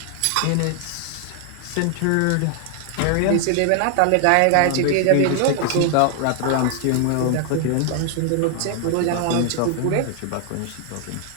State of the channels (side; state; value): both; different; correlation 0.00